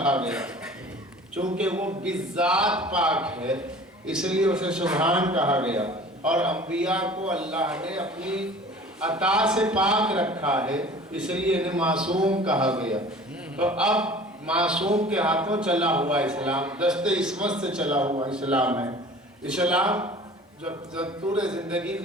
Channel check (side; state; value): both; normal; correlation 0.44